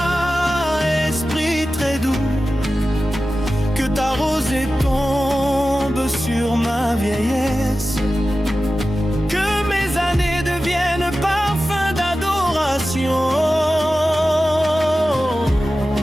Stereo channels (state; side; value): normal; both; correlation 0.94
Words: esprit très doux, que ta rosée tombe sur ma vieillesse, que mes années deviennent parfum d'adoration.